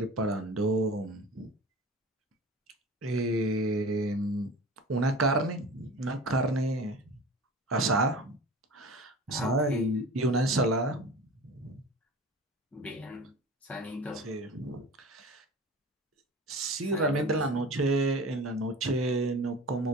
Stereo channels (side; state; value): both; normal; correlation 0.37